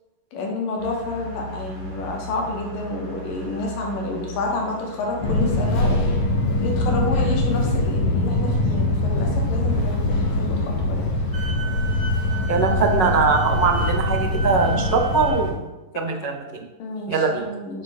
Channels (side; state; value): right; late; 11 ms